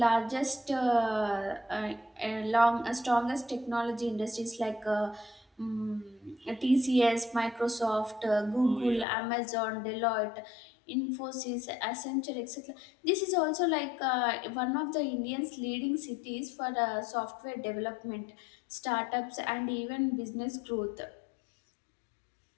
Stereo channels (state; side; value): drops out; right; at 9.1 s